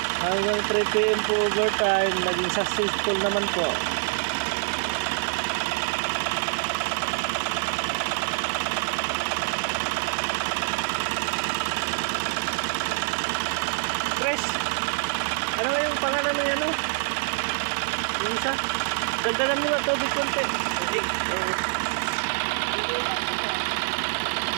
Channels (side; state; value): left; silent; 59 dB below the other